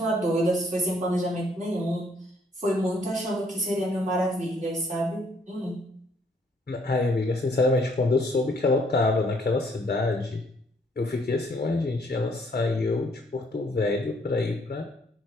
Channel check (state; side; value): normal; both; correlation 0.66